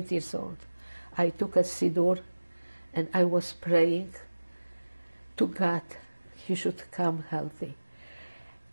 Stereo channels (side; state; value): both; inverted; correlation -1.00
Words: years old. I took a siddur, and I was praying to God he should come healthy.